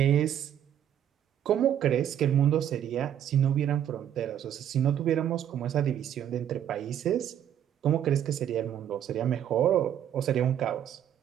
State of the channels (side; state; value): left; quieter; 10.1 dB